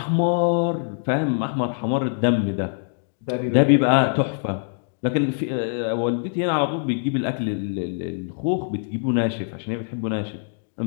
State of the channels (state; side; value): silent; right; digital silence